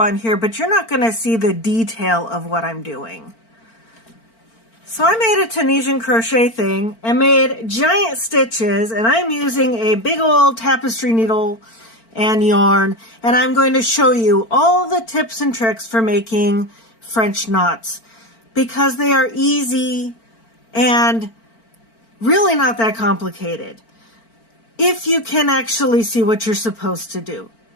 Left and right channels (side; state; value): right; late; 4.4 ms